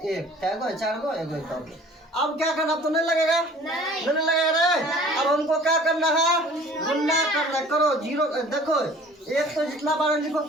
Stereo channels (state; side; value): normal; both; correlation 0.49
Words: क्या गो 4 गो 1 अब क्या करना? अब तो नहीं लगेगा, नहीं लगेगा रे। अब हमको क्या करना है? गुना करना। करो जीरो। देखो एक तो जितना बार लिखो